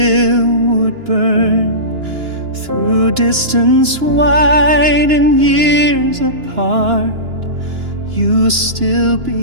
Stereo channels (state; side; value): late; left; 2.9 ms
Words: would burn. Through distance wide and years apart, you still